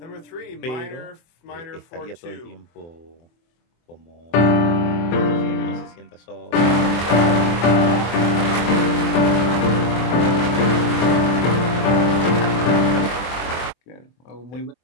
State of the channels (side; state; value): right; late; 23 ms